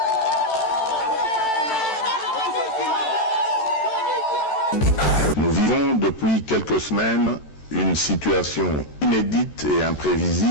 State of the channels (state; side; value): late; right; 13 ms